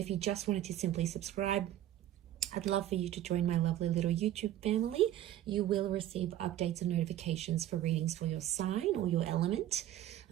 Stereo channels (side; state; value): left; quieter; 12.5 dB